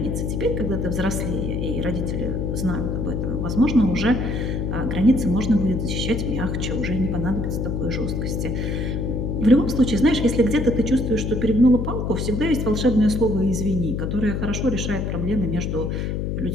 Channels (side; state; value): left; noise; hum, 1 dB below the sound